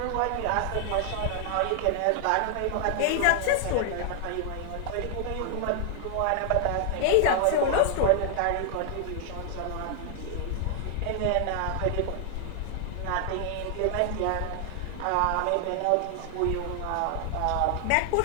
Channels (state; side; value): different; both; correlation 0.00